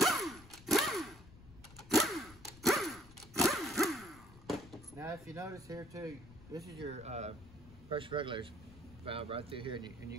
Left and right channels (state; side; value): noise; left; rumble, 21 dB below the sound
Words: Now if you notice here too, this is your pressure regulator valve right through here, and you